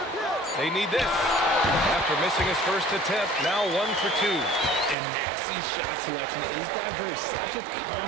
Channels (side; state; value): left; drops out; at 5.0 s